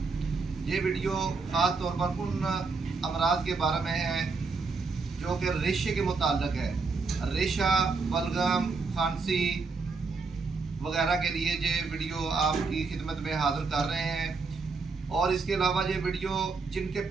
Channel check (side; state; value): left; quieter; 4.3 dB